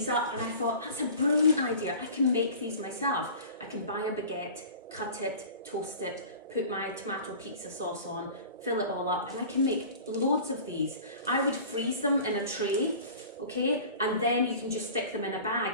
up and I thought that's a brilliant idea. I can make these myself. I can buy a baguette, cut it, toast it, put my tomato pizza sauce on, fill it all up, and I can make loads of these. I would freeze them in a tray, okay, and then you can just stick them in a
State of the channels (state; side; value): inverted; both; correlation -0.41